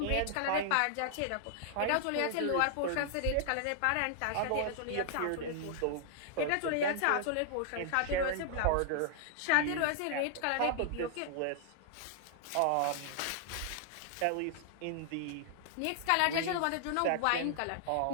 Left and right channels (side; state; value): both; different; correlation 0.00